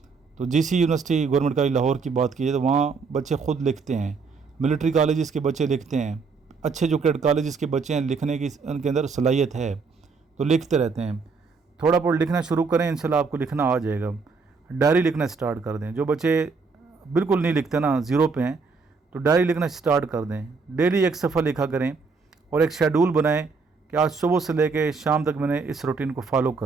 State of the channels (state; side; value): quieter; left; 4.7 dB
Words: تو جی سی یونیورسٹی گورنمنٹ کالج لاہور کی بات کی جائے تو وہاں بچے خود لکھتے ہیں، ملٹری کالجز کے بچے لکھتے ہیں، اچھے جو کیڈ کالجز کے بچے ہیں لکھنے کی ان کے اندر صلاحیت ہے تو لکھتے رہتے ہیں۔ تھوڑا بہت لکھنا شروع کریں، انشاءاللہ آپ کو لکھنا آ جائے گا۔ ڈائری لکھنا اسٹارٹ کر دیں. جو بچے بالکل نہیں لکھتے نا، زیرو پہ ہیں، تو ڈائری لکھنا اسٹارٹ کر دیں. ڈیلی ایک صفحہ لکھا کریں اور ایک شیڈول بنائیں کہ آج صبح سے لے کے شام تک میں نے اس روٹین کو فالو